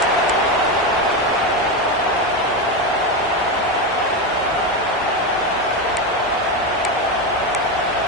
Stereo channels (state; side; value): normal; both; correlation 0.13